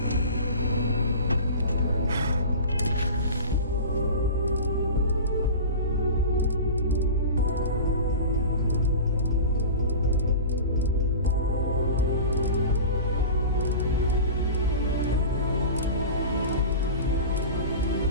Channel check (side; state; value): both; inverted; correlation -0.33